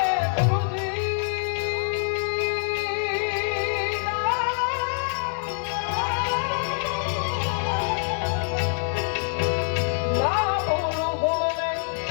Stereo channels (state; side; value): silent; right; 61 dB below the other